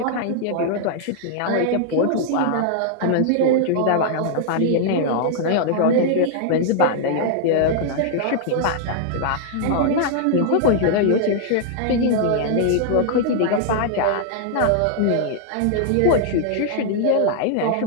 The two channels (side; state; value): both; different; correlation -0.01